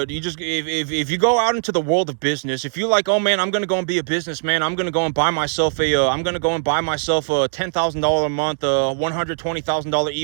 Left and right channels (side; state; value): left; silent; digital silence